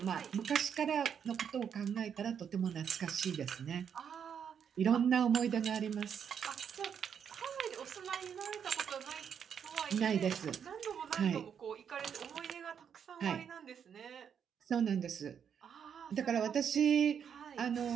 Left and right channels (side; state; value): left; quieter; 7.8 dB